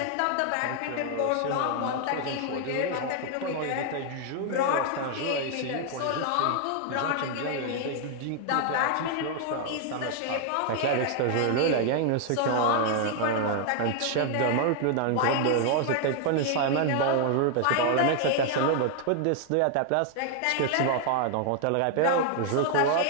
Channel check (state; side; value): different; both; correlation 0.00